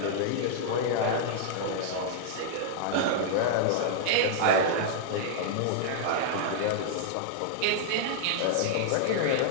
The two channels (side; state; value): both; different; correlation -0.01